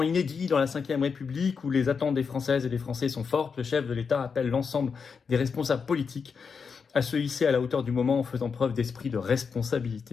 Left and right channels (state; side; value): quieter; right; 5.7 dB